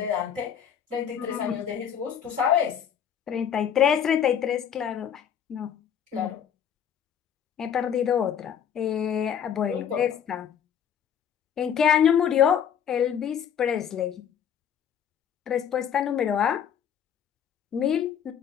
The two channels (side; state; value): right; quieter; 8.6 dB